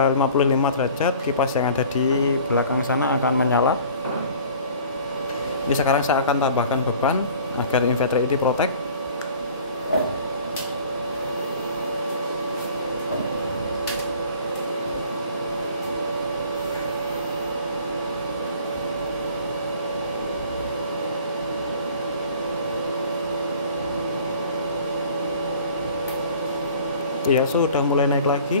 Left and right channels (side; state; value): both; inverted; correlation -0.48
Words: derajat, kipas yang ada di belakang sana akan menyala. Ini sekarang saya akan tambahkan beban agar inverter ini protect. Iya, sudah mulai naik